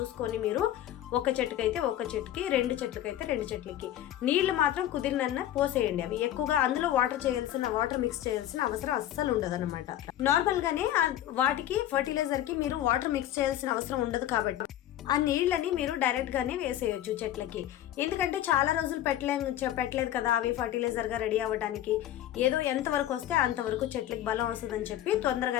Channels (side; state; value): right; quieter; 12.4 dB